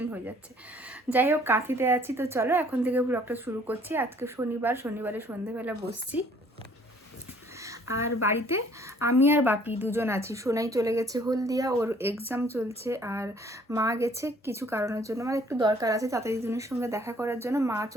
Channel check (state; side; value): normal; both; correlation 0.58